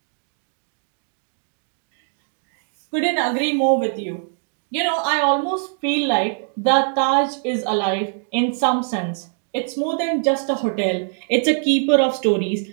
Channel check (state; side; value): silent; left; digital silence